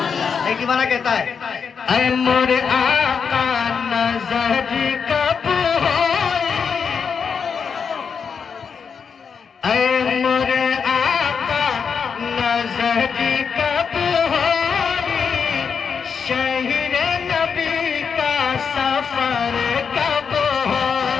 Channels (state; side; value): quieter; right; 6.2 dB